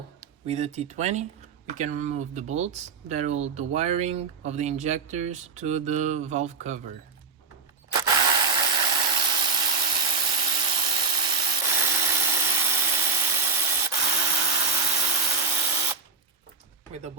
with the T20, we can remove the bolts that hold the wiring of the injectors to the valve cover. With the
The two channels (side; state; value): left; quieter; 4.5 dB